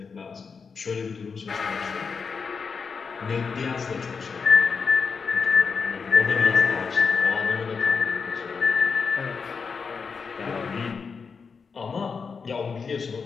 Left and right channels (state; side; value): quieter; right; 5.4 dB